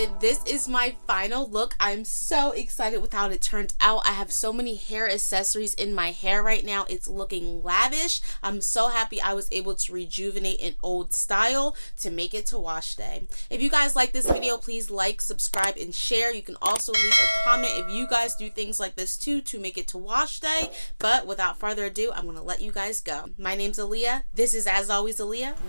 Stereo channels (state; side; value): inverted; both; correlation -1.00